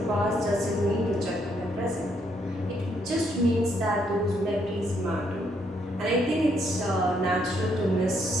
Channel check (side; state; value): both; normal; correlation 0.73